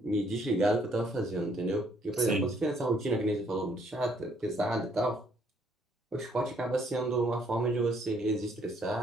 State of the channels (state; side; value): normal; both; correlation 0.67